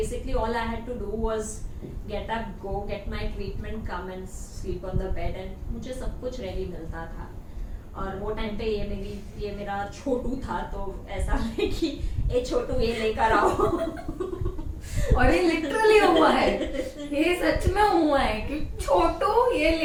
all I had to do was get up, go get my treatment, come and sleep on the bed, and मुझे सब कुछ रेडी मिलता था. और वो टाइम पे ये मेरा छोटू था, तो ऐसा है कि ए छोटू ये लेकर आओ. और ये लिटरली हुआ है, ये सच में हुआ है कि छोटू ये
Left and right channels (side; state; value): both; identical; correlation 1.00